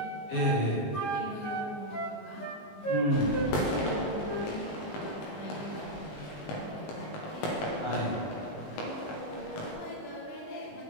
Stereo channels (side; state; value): right; late; 19 ms